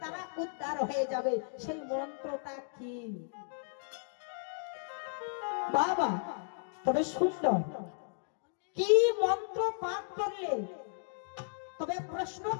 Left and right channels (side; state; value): right; silent; digital silence